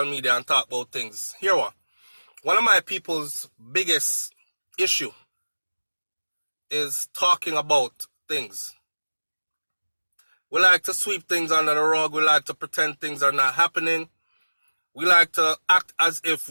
media and talk about things. Here what? One of my people's biggest issue is talking about things. We like to sweep things under the rug. We like to pretend things are not happening. We like to act as if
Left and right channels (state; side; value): inverted; both; correlation -1.00